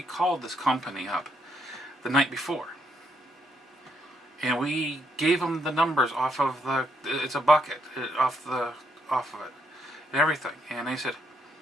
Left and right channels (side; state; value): both; normal; correlation 0.74